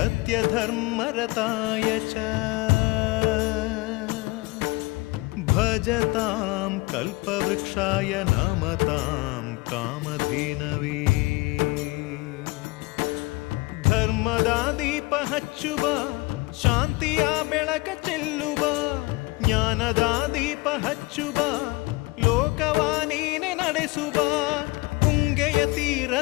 च भजतां कल्पवृक्षाय नमतां कामधेनवे। ಧರ್ಮದ ದೀಪ ಹಚ್ಚುವ ಶಾಂತಿಯ ಬೆಳಕ ಚೆಲ್ಲುವ ಜ್ಞಾನದ ದೀಪ ಹಚ್ಚುವ ಲೋಕವ ನೀನೆ ನಡೆಸುವ ಪುಂಗೆಯ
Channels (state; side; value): quieter; right; 23.1 dB